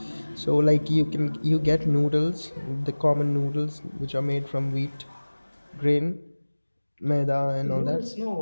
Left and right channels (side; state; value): both; inverted; correlation -1.00